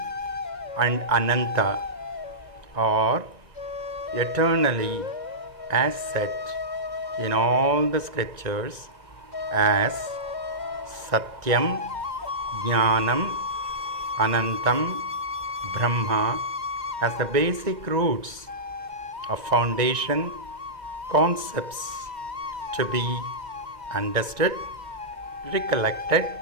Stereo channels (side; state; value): left; late; 1.9 ms